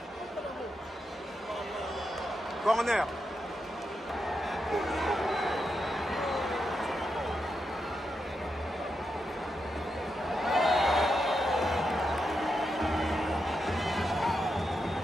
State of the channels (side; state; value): both; normal; correlation 0.86